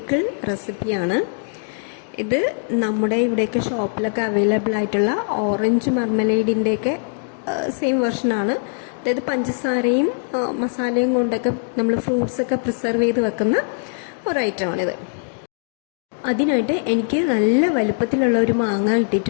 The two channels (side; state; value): right; silent; digital silence